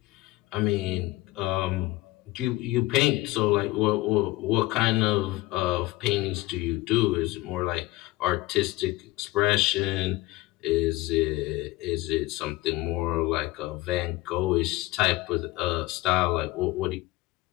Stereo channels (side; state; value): right; quieter; 19.4 dB